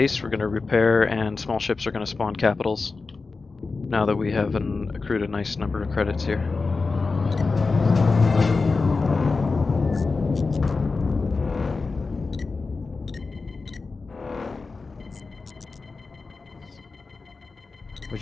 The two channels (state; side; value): quieter; right; 4.1 dB